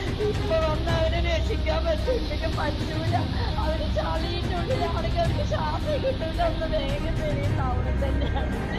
ഇപ്പൊ വന്ന് അവരെ രക്ഷിക്കാൻ പറ്റില്ല, പറ്റൂല. അവര് ചളിന്റെ ഉള്ളിലാണെങ്കിൽ അവർക്ക് ശ്വാസം കിട്ടൂല. ഒന്ന് വേഗം വരെയും ടൗണിൽ തന്നെയാണ്.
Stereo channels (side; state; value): both; identical; correlation 1.00